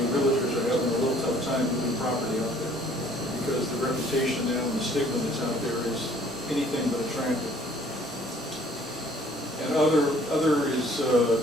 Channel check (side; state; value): both; normal; correlation 0.58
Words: realtors are having a little tough time moving property out there. stigma that's out there is anything but attractive. And other is,